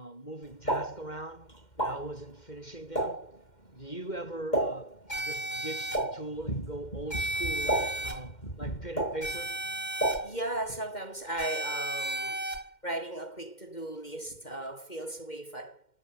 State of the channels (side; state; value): right; late; 2.1 ms